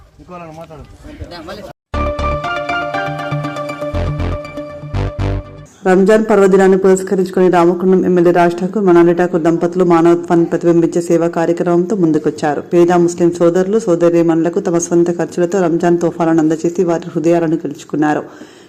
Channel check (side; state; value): both; identical; correlation 1.00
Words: రంజాన్ పర్వదినాన్ని పురస్కరించుకుని రామకుండం ఎమ్మెల్యే రాజ్ ఠాకూర్ మనాలి ఠాకూర్ దంపతులు మానవత్వాన్ని ప్రతిబింబించే సేవా కార్యక్రమంతో ముందుకొచ్చారు. పేద ముస్లిం సోదరులు సోదరీమణులకు తమ సొంత ఖర్చులతో రంజాన్ తోఫాలను అందజేసి వారి హృదయాలను గెలుచుకున్నారు.